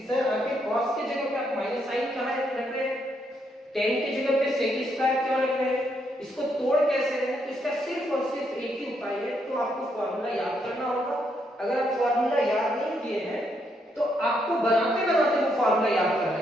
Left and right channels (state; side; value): normal; both; correlation 0.76